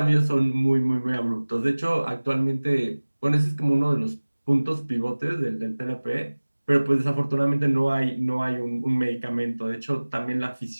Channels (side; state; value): both; inverted; correlation -1.00